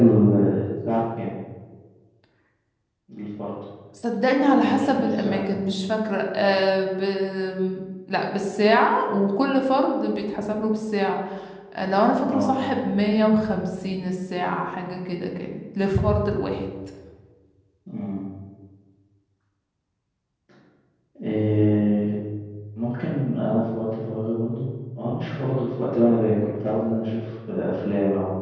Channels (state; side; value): identical; both; correlation 1.00